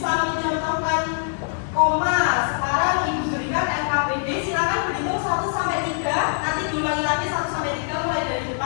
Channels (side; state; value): right; silent; digital silence